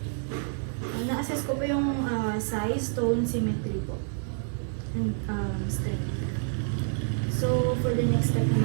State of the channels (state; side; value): silent; left; digital silence